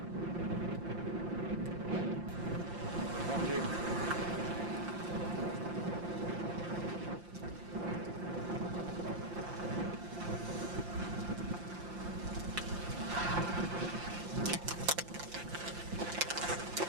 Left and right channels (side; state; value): left; late; 5.7 ms